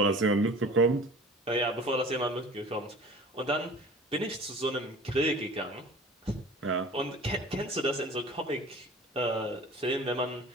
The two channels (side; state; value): both; normal; correlation 0.43